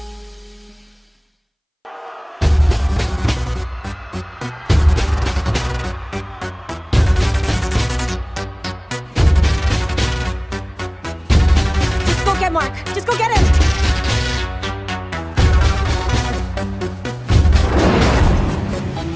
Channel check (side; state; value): both; identical; correlation 1.00